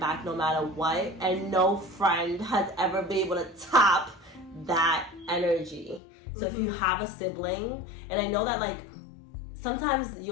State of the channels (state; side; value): drops out; right; at 6.0 s